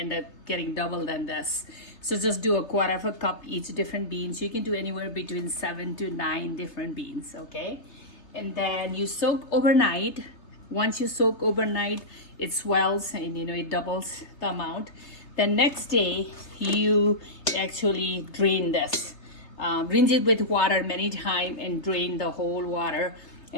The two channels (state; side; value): late; right; 3.1 ms